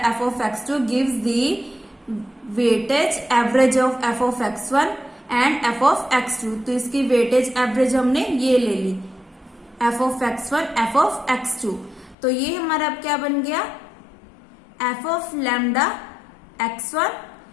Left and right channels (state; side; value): drops out; right; at 12.2 s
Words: f of x2 gives the weightage average of f of x1 and f of x2. तो इसकी वेटेज एवरेज हमने ये ले ली, f of x1 f of x2. तो ये हमारा अब क्या बन गया, f of lambda x1